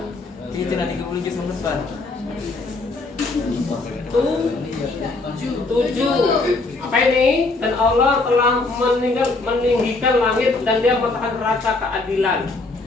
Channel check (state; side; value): quieter; right; 3.4 dB